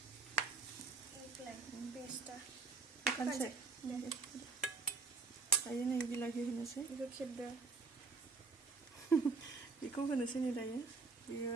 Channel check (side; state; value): left; quieter; 4.2 dB